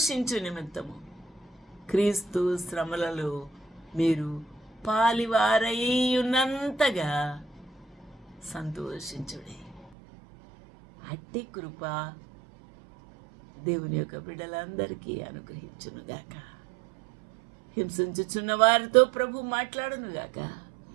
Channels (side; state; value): left; drops out; at 9.9 s